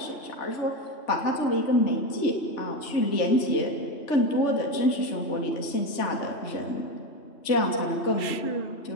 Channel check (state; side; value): late; right; 3.4 ms